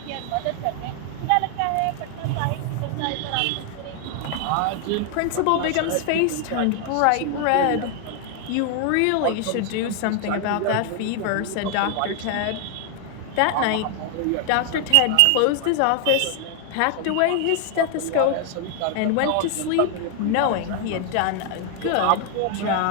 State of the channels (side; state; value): both; different; correlation 0.00